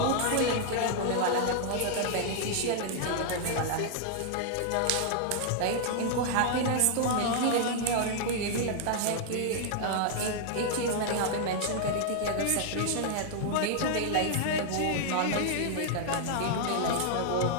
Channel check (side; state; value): both; different; correlation -0.01